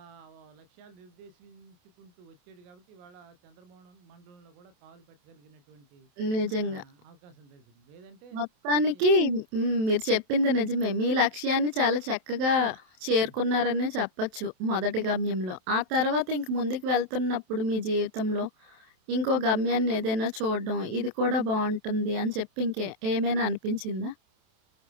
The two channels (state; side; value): late; left; 28 ms